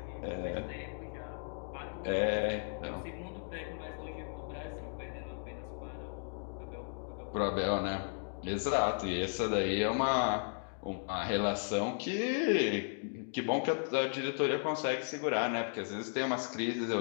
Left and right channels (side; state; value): right; silent; 54 dB below the other